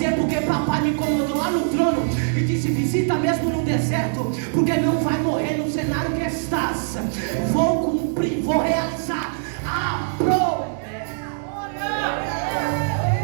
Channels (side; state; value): left; silent; digital silence